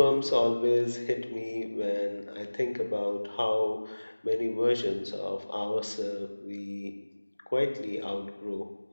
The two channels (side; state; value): both; inverted; correlation -1.00